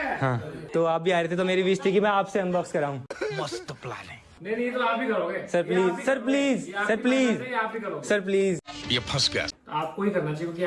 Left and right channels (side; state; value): both; identical; correlation 1.00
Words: हाँ, तो आप भी आ रहे थे तो मेरी विश थी कि मैं आपसे अनबॉक्स कराऊं। मस्त प्लान है। नहीं तो आप ही करोगे sir please, sir please, sir please, आप ही करोगे सर प्लीज। ये फंस गया। तो आपको ही करना चाहिए क्योंकि